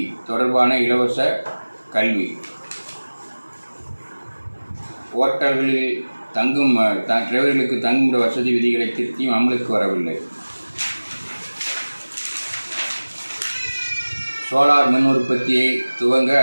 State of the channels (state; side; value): inverted; both; correlation -1.00